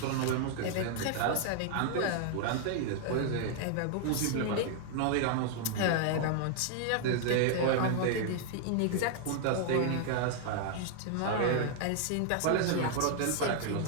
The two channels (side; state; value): both; different; correlation -0.01